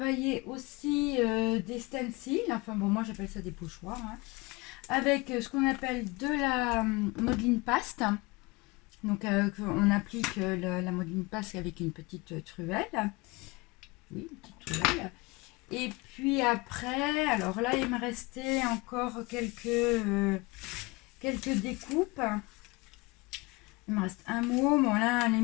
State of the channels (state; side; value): quieter; right; 24.6 dB